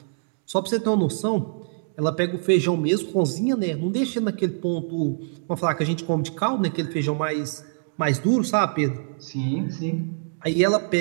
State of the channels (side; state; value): left; silent; digital silence